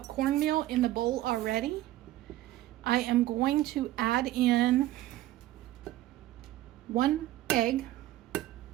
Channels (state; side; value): quieter; left; 15.2 dB